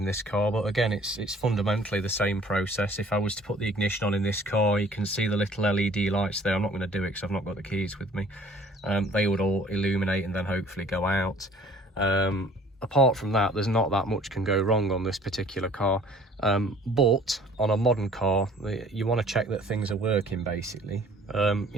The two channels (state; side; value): normal; both; correlation 0.54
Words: this car, but again, it's fundamentally the same process. If I was to put the ignition on in this car, you can see the little LED lights there. I'm not going to do it because I've not got the keys with me. They would all illuminate and then hopefully go out. apart from that, there's not that much can go wrong on this particular car. But on a modern car, you want to check that things are working, basically.